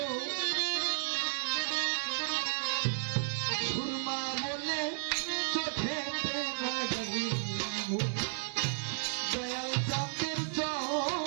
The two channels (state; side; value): silent; left; 56 dB below the other